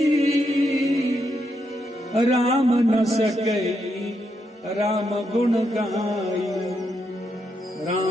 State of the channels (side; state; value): both; normal; correlation 0.81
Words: राम न सके राम गुण गाई।